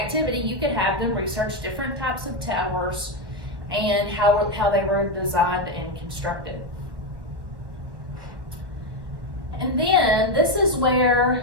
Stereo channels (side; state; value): left; late; 1.1 ms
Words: you could have them research different types of towers and how they were designed and constructed. And then this is